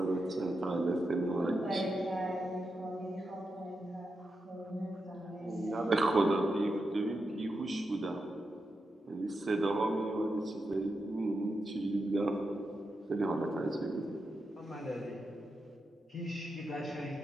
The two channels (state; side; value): normal; both; correlation 0.87